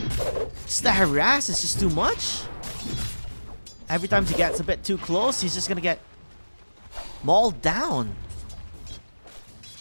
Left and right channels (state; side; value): inverted; both; correlation -1.00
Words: Just the harass is just too much. Every time he gets a bit too close, he's just going to get mauled down.